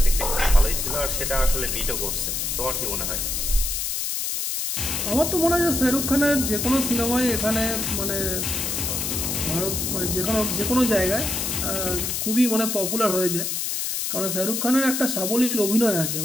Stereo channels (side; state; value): left; noise; hiss, 1 dB below the sound